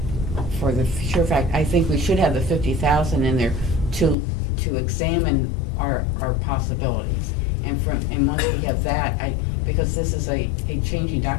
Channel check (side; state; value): right; drops out; at 4.2 s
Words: For the sure fact, I think we should have the 50,000 in there to examine our possibilities. And once we have that, because this is a changing